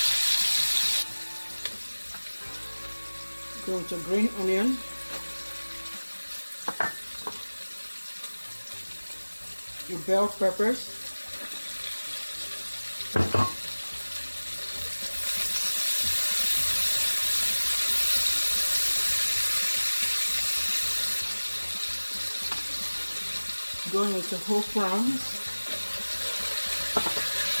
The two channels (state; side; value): inverted; both; correlation -1.00